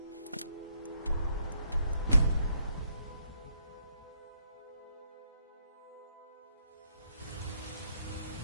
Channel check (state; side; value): inverted; both; correlation -0.74